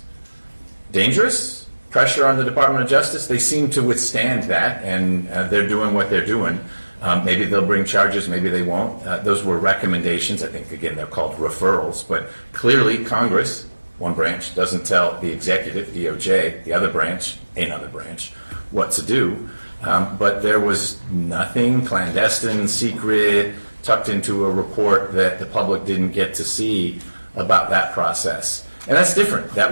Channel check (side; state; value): both; inverted; correlation -1.00